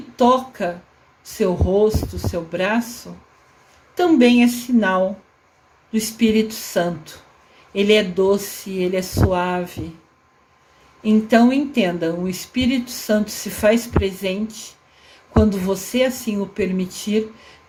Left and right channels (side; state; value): both; identical; correlation 1.00